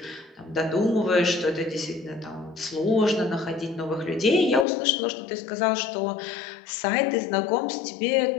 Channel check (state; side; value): drops out; right; at 4.7 s